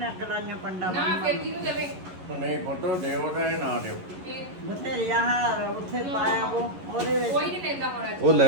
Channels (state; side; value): late; left; 11 ms